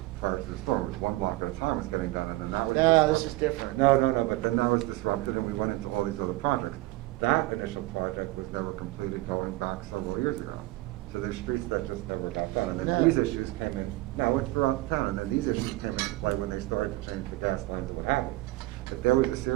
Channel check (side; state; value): left; quieter; 18.8 dB